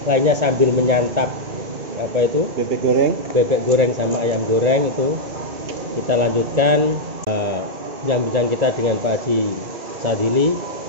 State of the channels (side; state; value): left; late; 2.2 ms